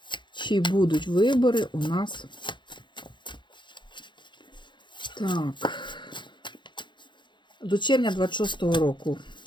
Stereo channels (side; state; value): right; late; 0.23 ms